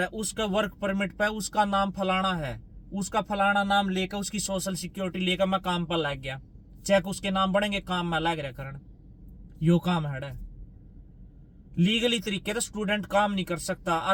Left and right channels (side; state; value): both; identical; correlation 1.00